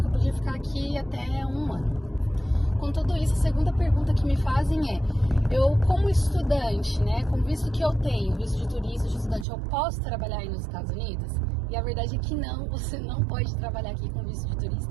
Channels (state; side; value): drops out; left; at 9.5 s